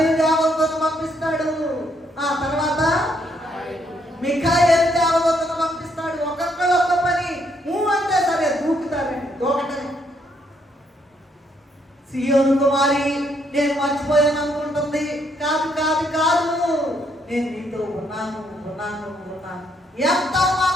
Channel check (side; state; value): both; normal; correlation 0.72